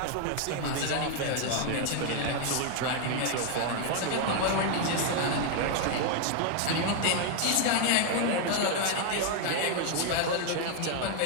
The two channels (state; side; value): different; both; correlation 0.00